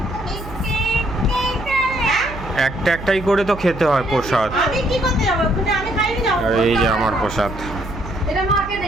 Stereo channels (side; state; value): right; noise; hum, 12 dB below the sound